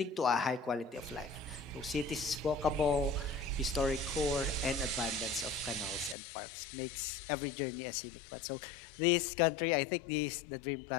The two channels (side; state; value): right; drops out; at 6.2 s